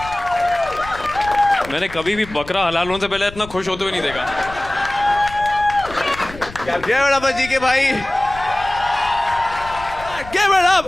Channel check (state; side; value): noise; left; rumble, 16 dB below the sound